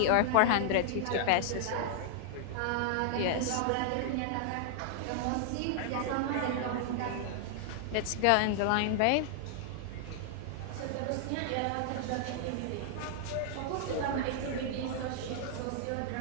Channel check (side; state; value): both; different; correlation -0.01